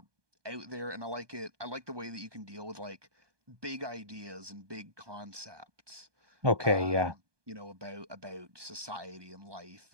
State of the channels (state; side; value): late; left; 1.2 ms